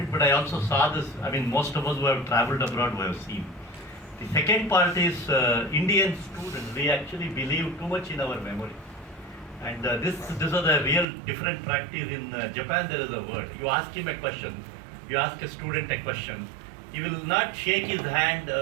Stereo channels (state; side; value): drops out; left; at 11.1 s